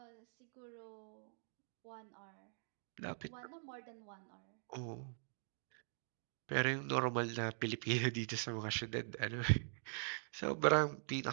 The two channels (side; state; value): left; silent; digital silence